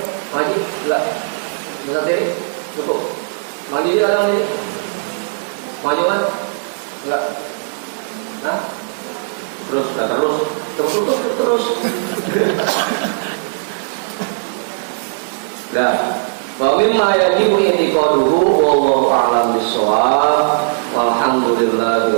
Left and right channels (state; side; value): silent; left; digital silence